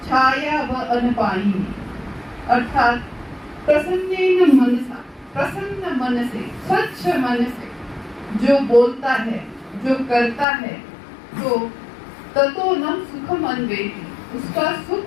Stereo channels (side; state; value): right; drops out; at 10.5 s